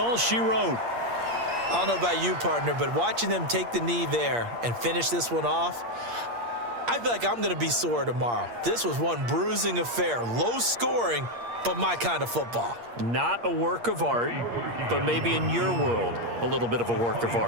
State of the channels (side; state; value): left; late; 8.5 ms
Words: she wrote. I don't know about you, partner, but watching them take the knee there and finish this one off, I feel like I'm going to be sore tomorrow. This was one bruising affair, low scoring, but my kind of football. Not a work of art, but maybe in your world, a little bit of a work of